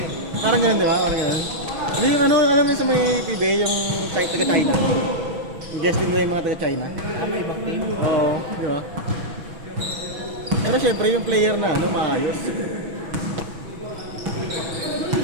Parang ganun, di ba? Parang ganun. Hindi yung ano, alam mo sa may PBA, yung taga-China. Yung guest team nila yung mga taga-China. Ah, may ibang team. Oo, di ba? Pero syempre yung player na ano, maayos.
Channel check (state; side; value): late; left; 6.1 ms